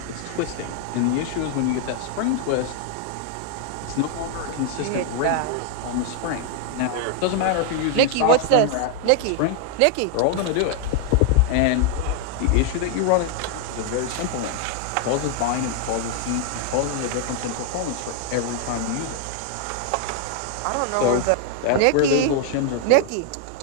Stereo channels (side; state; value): both; different; correlation 0.00